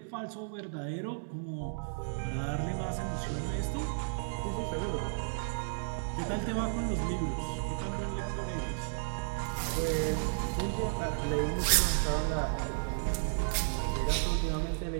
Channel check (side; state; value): left; silent; digital silence